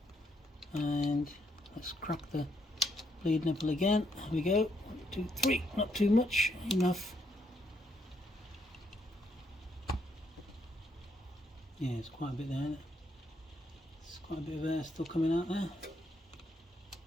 and let's crack the bleed nipple again. Here we go. 1, 2, 3. Not too much, enough. Yeah, it's quite a bit there, isn't it? There's quite a bit of air still coming out there.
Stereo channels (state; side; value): normal; both; correlation 0.74